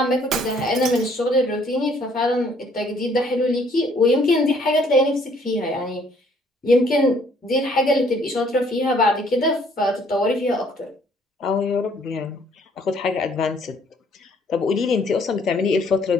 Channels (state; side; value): normal; both; correlation 0.62